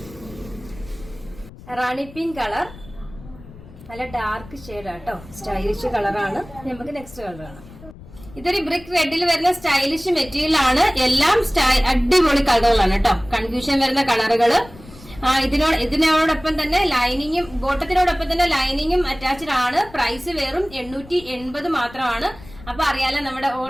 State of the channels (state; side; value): noise; left; rumble, 19 dB below the sound